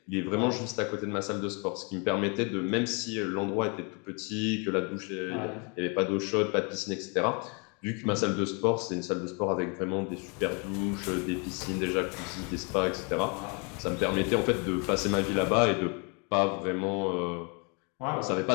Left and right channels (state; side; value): quieter; right; 33.6 dB